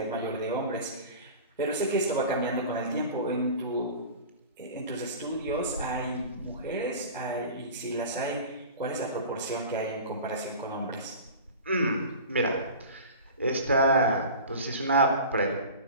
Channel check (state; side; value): inverted; both; correlation -0.37